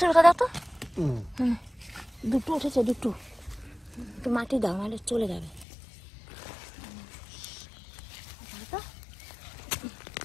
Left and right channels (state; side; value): drops out; right; at 5.7 s